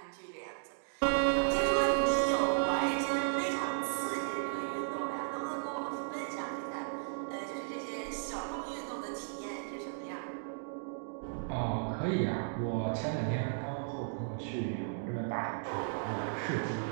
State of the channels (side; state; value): left; silent; digital silence